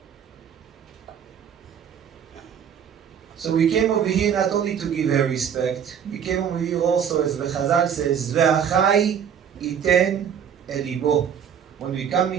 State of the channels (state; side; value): quieter; left; 8.1 dB